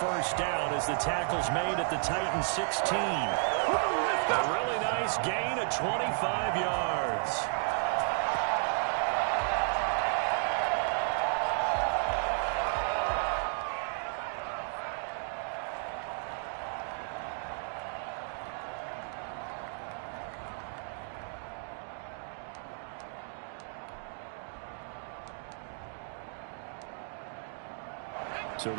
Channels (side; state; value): left; silent; 56 dB below the other